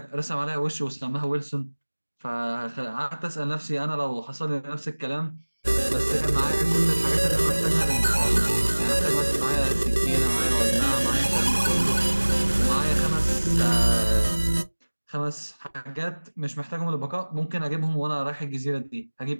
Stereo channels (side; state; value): both; inverted; correlation -1.00